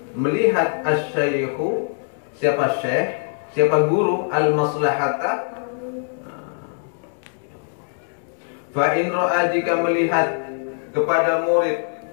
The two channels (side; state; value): right; silent; digital silence